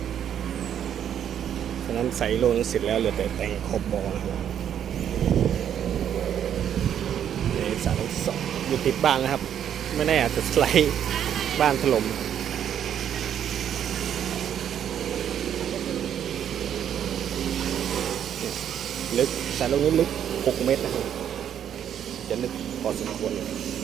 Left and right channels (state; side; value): quieter; left; 9.5 dB